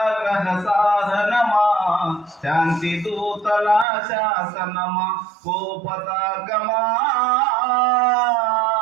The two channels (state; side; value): drops out; left; at 3.9 s